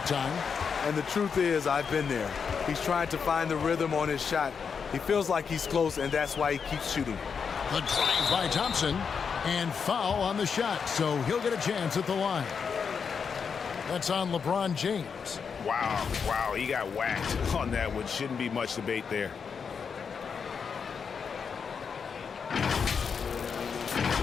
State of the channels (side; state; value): right; quieter; 6.2 dB